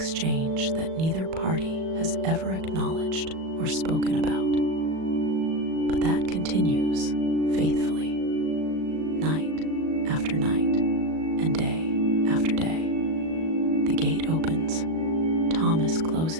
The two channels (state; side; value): late; left; 37 ms